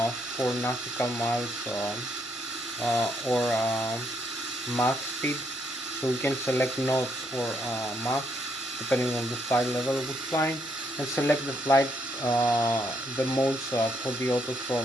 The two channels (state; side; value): normal; both; correlation 0.75